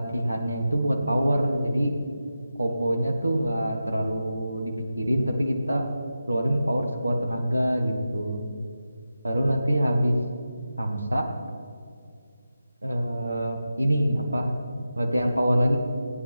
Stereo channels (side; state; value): both; inverted; correlation -0.91